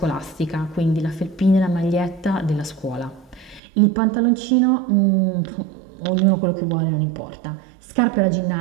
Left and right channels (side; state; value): left; drops out; at 3.6 s